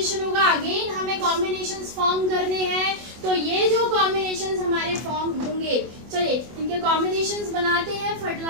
होगा, अगेन हमें कॉम्बिनेशंस फॉर्म करने हैं। तो ये जो कॉम्बिनेशंस हमारे फॉर्म होंगे, चलिए इनके कॉम्बिनेशंस बनाते हैं,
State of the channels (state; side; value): late; left; 24 ms